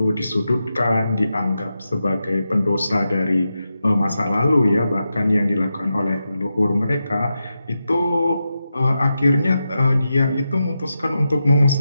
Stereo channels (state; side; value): inverted; both; correlation -0.89